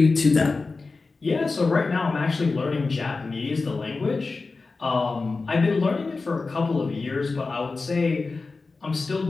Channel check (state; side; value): quieter; right; 3.9 dB